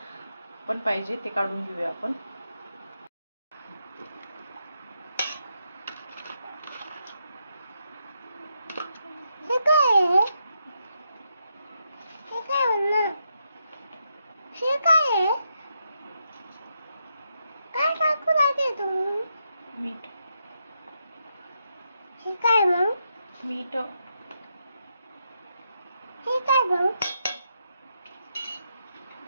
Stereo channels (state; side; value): inverted; both; correlation -0.82